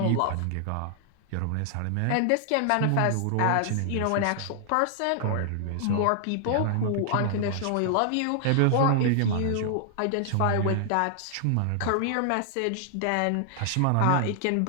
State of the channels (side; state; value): both; different; correlation -0.01